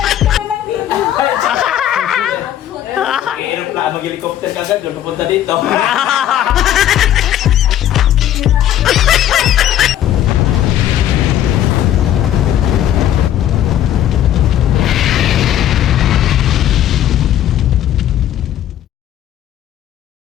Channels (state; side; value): quieter; right; 11.5 dB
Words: Mag-aeroplano, mag-helicopter ka agad. Doon pupunta dito.